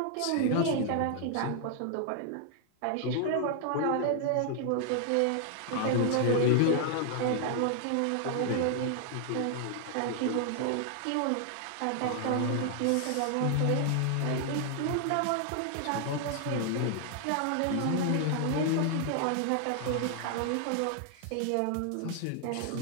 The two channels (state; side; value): different; both; correlation 0.00